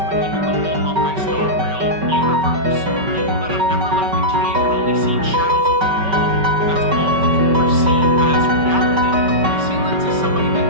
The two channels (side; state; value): left; late; 5.2 ms